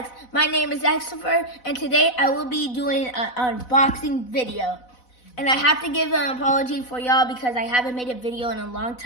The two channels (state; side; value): late; right; 4.0 ms